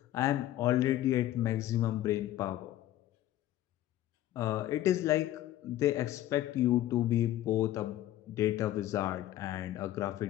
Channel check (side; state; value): right; quieter; 13.8 dB